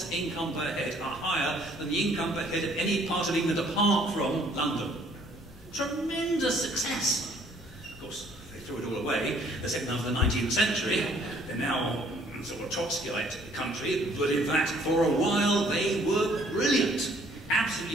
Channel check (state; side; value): normal; both; correlation 0.61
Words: income per head are higher than the income per head of any part of England apart from London. Tremendous success. Of course, they threw it all away the second half of the 19th century. They're now sort of Trotskyite country, but in fact, for a while they were brilliant.